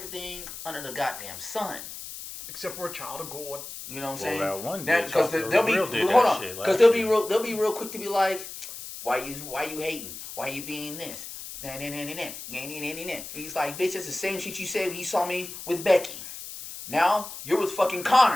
under the goddamn sun. Except we're a child of God. You know what I'm saying? That one because they'll be because they'll be real quick to be like, why you hating? Why you being this? He's like, bitch, that's the same shit you said when you saw me with Becky. Now you're with fucking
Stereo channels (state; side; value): noise; left; hiss, 11 dB below the sound